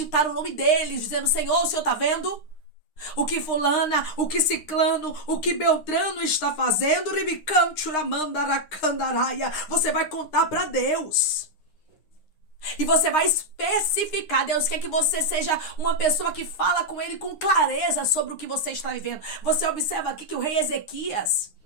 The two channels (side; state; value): right; late; 9.7 ms